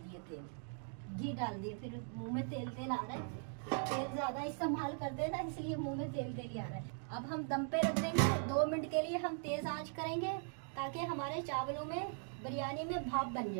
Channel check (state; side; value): silent; left; 51 dB below the other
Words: तेल, घी डाल दिए। फिर मुंह में तेल आ रहा है, तेल ज़्यादा इस्तेमाल कर देना, इसलिए मुंह में तेल ही आ रहा है। अब हम दम पे रख देंगे 2 मिनट के लिए। हम तेज़ आंच करेंगे ताकि हमारे चावलों में, बिरयानी में भाप बन